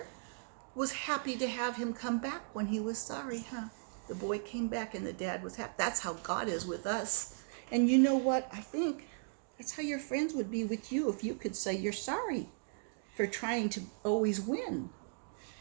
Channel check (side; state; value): left; silent; digital silence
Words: was happy to have him come back when he was sorry, huh? The boy came back and the dad was happy. That's how God is with us. And you know what? I think that's how your friends would be with you if you could say you're sorry for trying to always win.